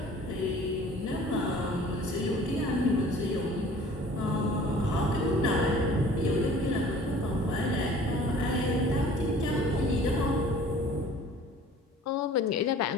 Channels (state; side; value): normal; both; correlation 0.49